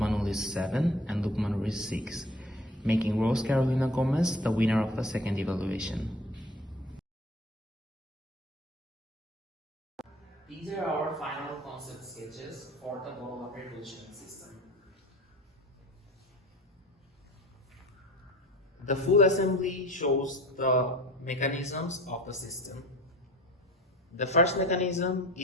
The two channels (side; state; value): both; normal; correlation 0.43